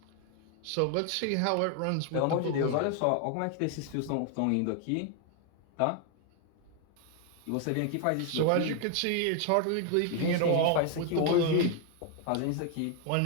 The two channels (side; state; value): both; different; correlation 0.00